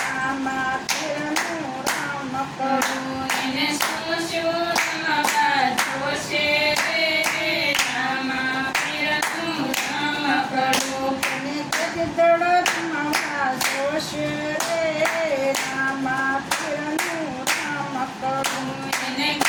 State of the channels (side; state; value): both; identical; correlation 1.00